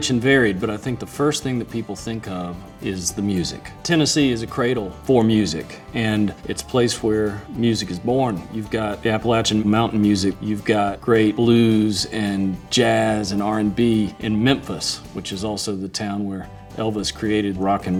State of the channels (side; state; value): both; identical; correlation 1.00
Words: and varied, but I think the first thing that people think of is the music. Tennessee is a cradle for music, and it's a place where music is born. You've got the Appalachian mountain music, you've got great blues and jazz and R&B in Memphis, which is also the town where Elvis created rock